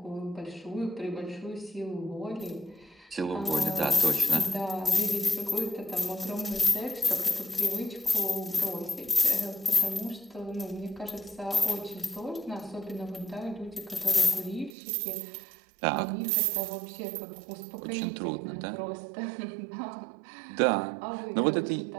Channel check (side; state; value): left; drops out; at 14.7 s